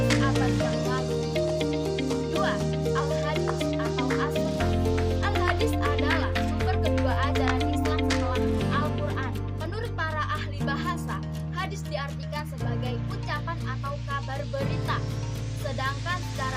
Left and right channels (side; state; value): both; identical; correlation 1.00